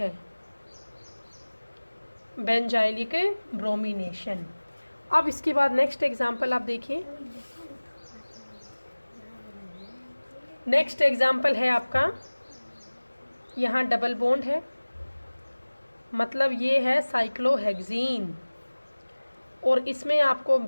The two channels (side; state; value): both; inverted; correlation -1.00